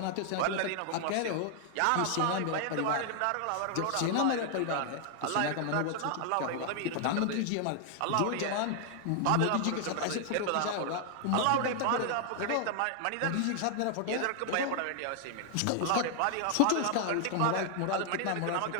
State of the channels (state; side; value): different; both; correlation 0.00